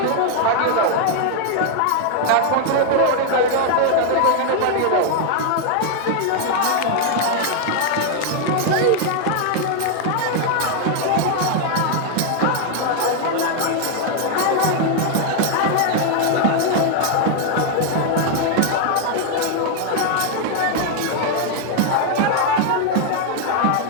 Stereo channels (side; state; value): both; different; correlation 0.00